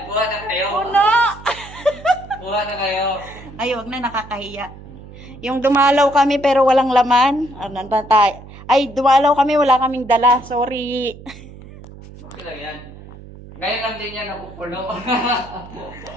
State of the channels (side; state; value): right; noise; hum, 17 dB below the sound